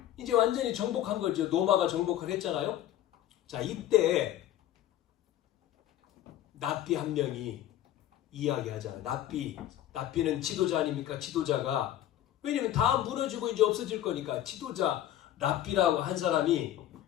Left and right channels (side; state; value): right; quieter; 12.5 dB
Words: 이제 완전히 정복한 거죠. 로마가 정복을 했잖아요. 자, 이때 납비 한 명이 이야기하잖아요. 납비는 지도자 아닙니까? 지도자가 왜냐면 다 무너지고 이제 없어질 거니까 지도자 납비라고 한 사람이